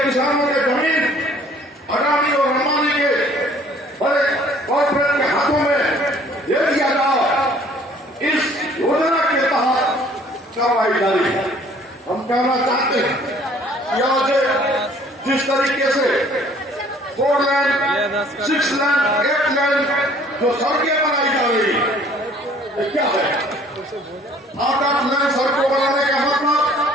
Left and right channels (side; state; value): both; normal; correlation 0.56